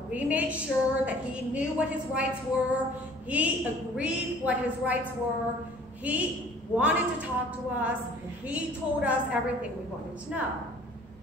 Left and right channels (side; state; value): right; noise; rumble, 25 dB below the sound